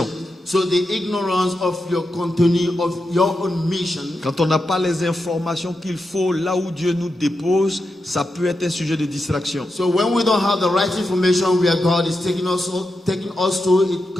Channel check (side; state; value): both; normal; correlation 0.88